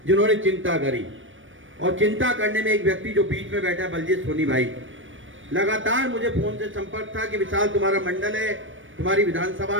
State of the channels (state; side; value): late; left; 0.57 ms